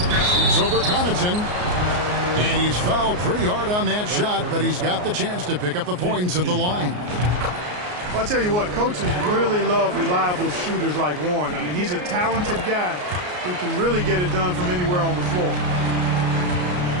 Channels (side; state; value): left; late; 33 ms